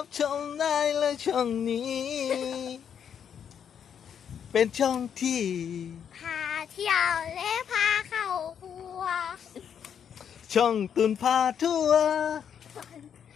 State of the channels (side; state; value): right; quieter; 8.2 dB